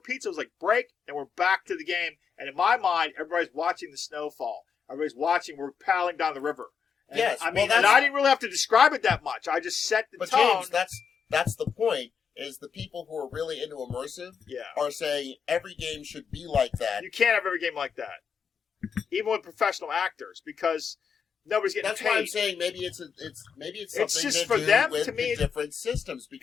It was like, break, and we're back to the game. And in my mind, everybody's watching the snowfall. Everybody's watching, we're paddling down the river. And, Yes, I well, mean, that's- and I didn't really have to describe it that much. I just set the But tone. James, that's the point. Is the people who are really into immersive Yeah. are saying every game should be like that. You can't have every game like that. Even with professional actors, because nobody's getting That's paid. why I'm saying maybe it's something It's just to for do them, with to me, the different systems,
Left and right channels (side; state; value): right; quieter; 6.6 dB